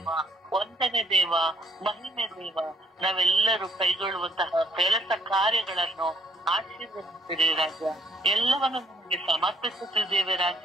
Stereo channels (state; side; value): normal; both; correlation 0.65